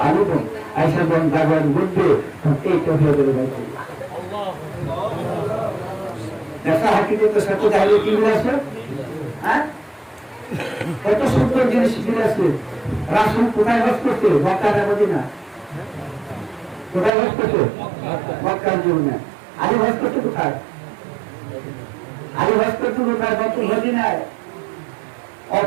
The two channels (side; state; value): left; drops out; at 17.1 s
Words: আলিম আইসা যখন জাগরণ ঘটবে, এইটা হয়ে যাবে বাইতুল্লাহ। দেখা হাকিকতের সাথে তাহলে কি মিল আছে? হ্যাঁ, কত সুন্দর জিনিস মিল আছে। রাসূল কোথায় বাস করছে? মক্কা না মদিনা? কোথায় বাস করছে? মক্কার জীবনে। আলী বাস করছে কোথায়? আলী বাস করছে কোথায়? মদিনায়।